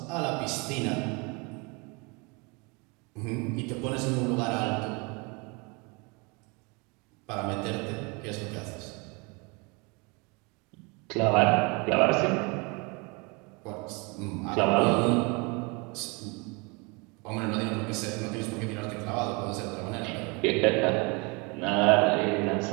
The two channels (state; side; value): quieter; left; 29.5 dB